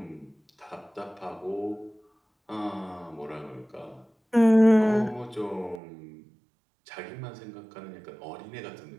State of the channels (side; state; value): left; drops out; at 5.8 s